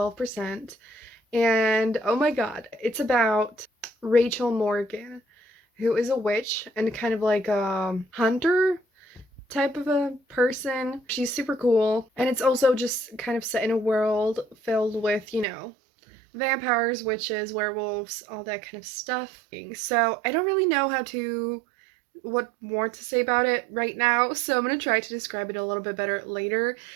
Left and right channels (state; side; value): drops out; left; at 15.5 s